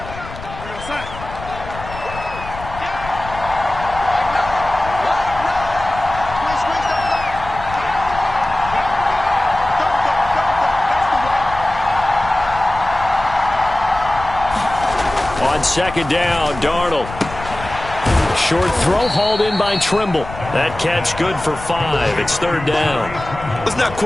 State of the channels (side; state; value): left; noise; rumble, 12 dB below the sound